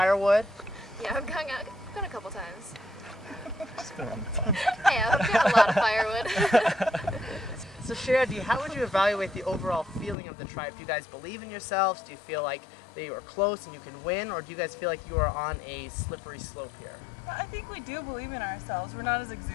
Yeah, I've gone a couple times. Just been on the phone. Yeah, I've got a lot of firewood. So Shandy, how would you evaluate the overall feeling of the tribe? Do you guys believe in yourselves? Do you feel like they are close and you can win? Or do you guys feel like you are on a slippery slope here? I think we do believe in ourselves. We're not as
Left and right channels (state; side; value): drops out; right; at 10.2 s